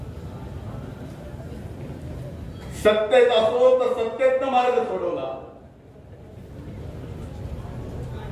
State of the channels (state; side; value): identical; both; correlation 1.00